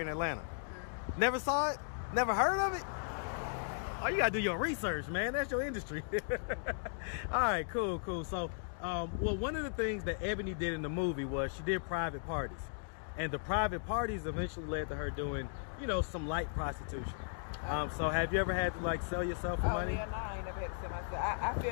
in Atlanta. Never saw it? Never heard of it? Oh, you gotta do your research, man. That's your industry. All right, cool. So, well, one of the things that Ebony did in the movie was she did private parties. And the private parties eventually led to her doing, you know, some light prostitution. So have you ever had to, like, sell yourself for money? Yeah, no, I ain't never had to sell myself. I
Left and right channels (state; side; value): silent; right; digital silence